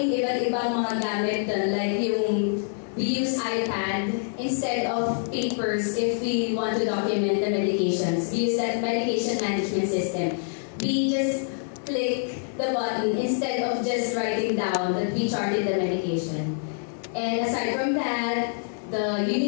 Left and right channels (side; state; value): right; silent; 61 dB below the other